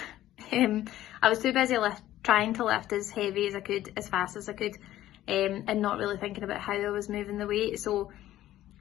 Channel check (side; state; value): right; quieter; 13.8 dB